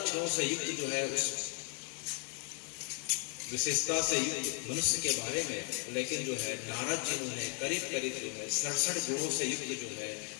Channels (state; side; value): quieter; right; 39.3 dB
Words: से युक्त जो है उस विशेषता से युक्त मनुष्य के बारे में, लेकिन जो है नारद जी ने करीब करीब जो है 67 गुणों से युक्त जो है